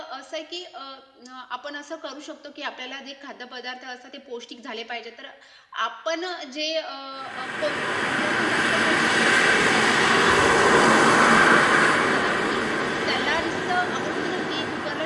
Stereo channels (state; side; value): identical; both; correlation 1.00